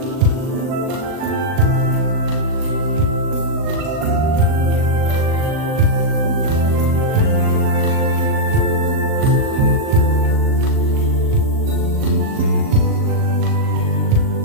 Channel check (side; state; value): left; late; 38 ms